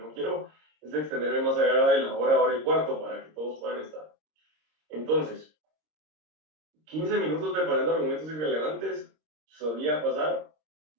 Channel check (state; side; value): late; left; 26 ms